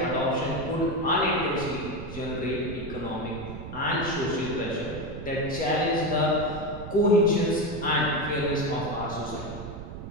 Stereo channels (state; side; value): noise; right; rumble, 10 dB below the sound